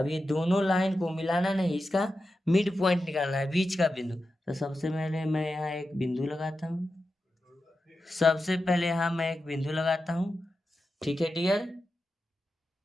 ये दोनों लाइन को मिलाना नहीं, इसका मिड पॉइंट निकालना है, बीच का बिंदु। तो सबसे पहले मैं यहाँ एक बिंदु लगाता हूँ, सबसे पहले यहाँ मैं एक बिंदु लगाता हूँ, ठीक है डियर,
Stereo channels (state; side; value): normal; both; correlation 0.91